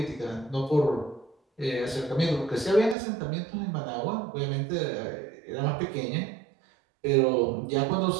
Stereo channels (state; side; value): drops out; left; at 3.0 s